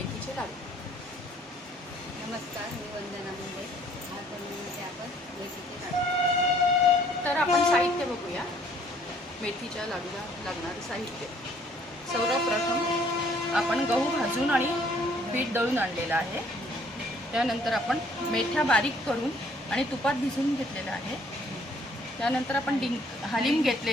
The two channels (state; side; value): normal; both; correlation 0.60